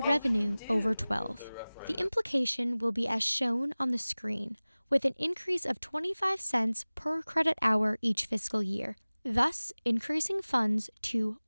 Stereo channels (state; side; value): inverted; both; correlation -0.99